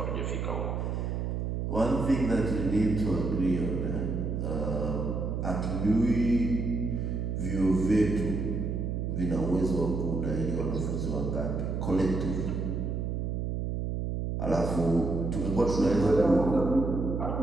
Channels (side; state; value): right; noise; hum, 2 dB below the sound